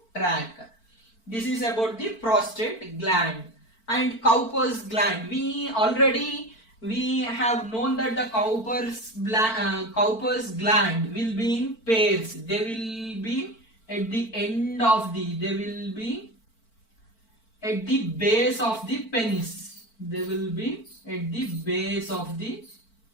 tract. This is about the prostate gland. And Cowper's gland, we have known that the Cowper's gland will be in pairs. They will be at the end of the, they will be at the base of the penis. They will be at the base of the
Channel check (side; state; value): right; late; 4.5 ms